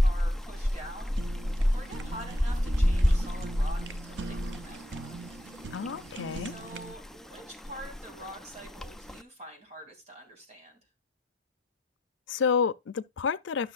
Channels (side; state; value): both; normal; correlation 0.67